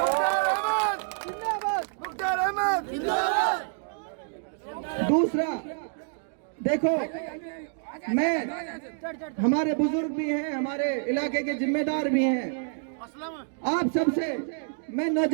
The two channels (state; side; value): silent; left; digital silence